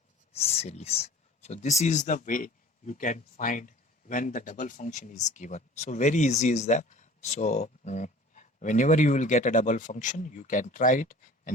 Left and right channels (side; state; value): both; normal; correlation 0.46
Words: series. So this is the way you can find when the double function is given. So very easy is that. So whenever you will get a double function, you can try it